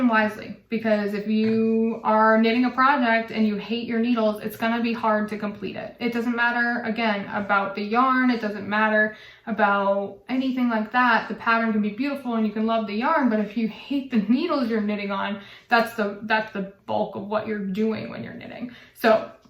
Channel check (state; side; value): identical; both; correlation 1.00